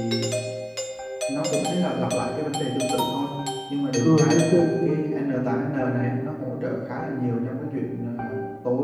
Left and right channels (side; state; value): both; identical; correlation 1.00